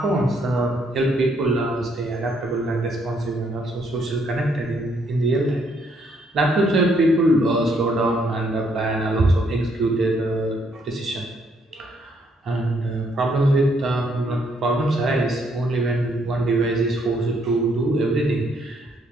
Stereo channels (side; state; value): both; normal; correlation 0.70